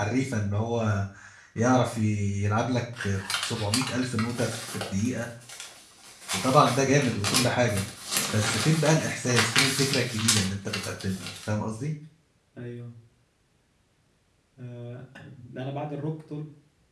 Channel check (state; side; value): identical; both; correlation 1.00